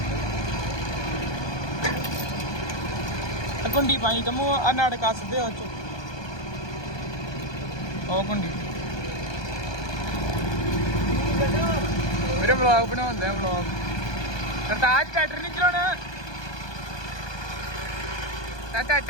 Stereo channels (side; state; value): right; late; 1.2 ms